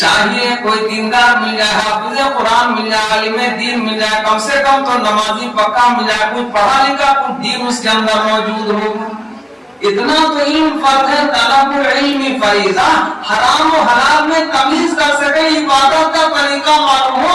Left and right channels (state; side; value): identical; both; correlation 1.00